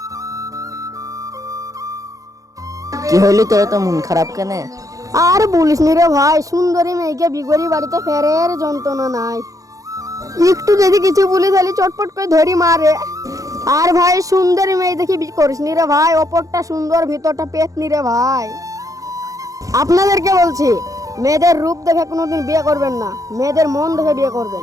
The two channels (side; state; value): left; late; 0.16 ms